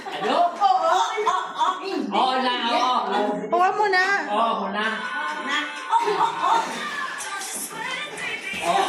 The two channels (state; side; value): identical; both; correlation 1.00